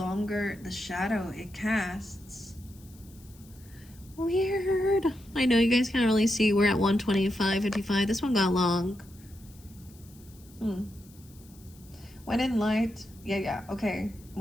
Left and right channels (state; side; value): noise; left; hiss, 25 dB below the sound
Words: the shadow it casts. Weird. I know you guys can't really see. We're at 125:55. This one got long. When in light, okay.